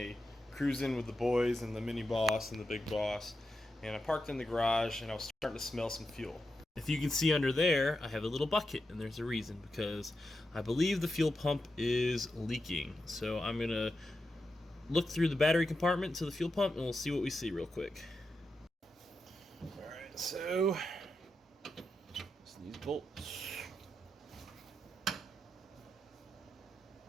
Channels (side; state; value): both; normal; correlation 0.88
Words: cruising with the boys and the mini boss and the big boss, and I parked in the garage and I was starting to smell some fuel. If you can see under there, I have a little bucket, and there's a reason, because I believe the fuel pump is leaking. So I'm gonna look through the battery compartment to the fuel pump and we'll see what we see real quick. Alright, so these bolts.